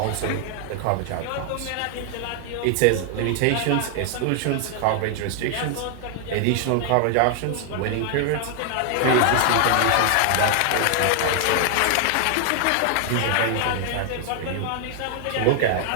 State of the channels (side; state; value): both; different; correlation 0.00